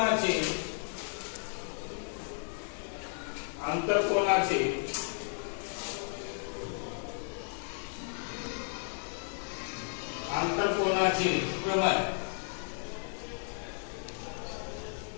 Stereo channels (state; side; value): silent; right; 55 dB below the other